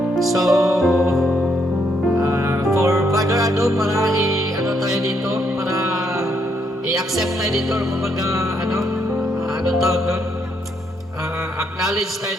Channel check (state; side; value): normal; both; correlation 0.74